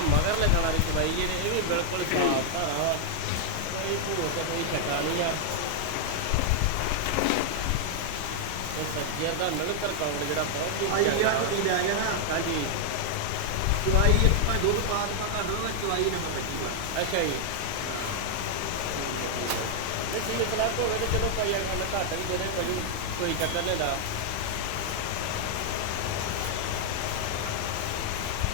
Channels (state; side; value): different; both; correlation 0.00